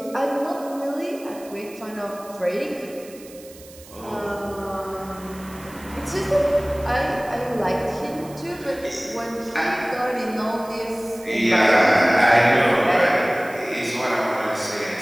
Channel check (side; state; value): right; noise; hiss, 21 dB below the sound